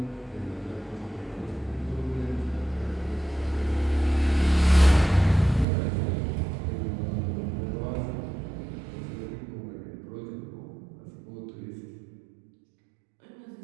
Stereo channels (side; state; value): left; drops out; at 5.7 s